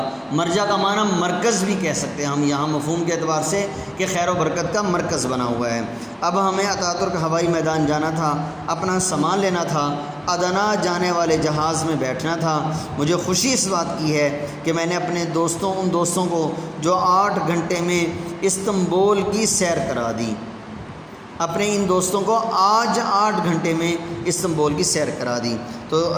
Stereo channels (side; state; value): both; identical; correlation 1.00